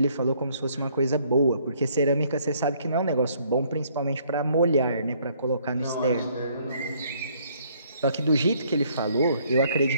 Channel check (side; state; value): both; inverted; correlation -0.64